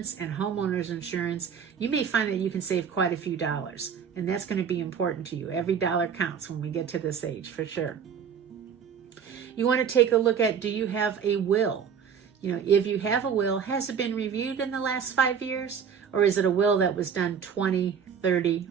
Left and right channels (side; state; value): left; quieter; 7.1 dB